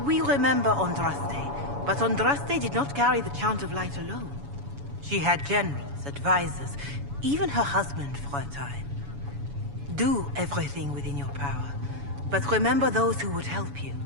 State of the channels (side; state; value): left; late; 7.1 ms